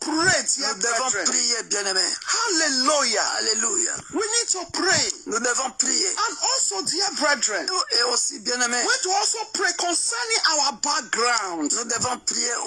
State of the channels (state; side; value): identical; both; correlation 1.00